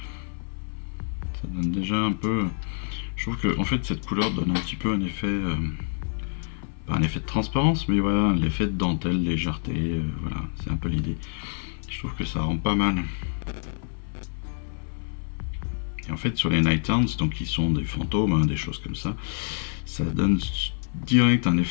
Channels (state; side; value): silent; right; 60 dB below the other